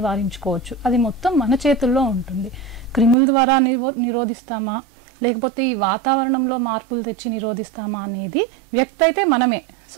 అది మొత్తం మన చేతుల్లో ఉంటుంది. క్రిముల ద్వారా నిరోధిస్తామా, లేకపోతే ఈ వాతావరణంలో మార్పులు తెచ్చి నిరోధిస్తామా అనేది వ్యక్తి అయితే మనమే.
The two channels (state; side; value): drops out; left; at 3.2 s